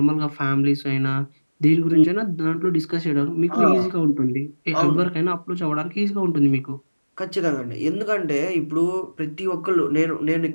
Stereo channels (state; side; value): inverted; both; correlation -1.00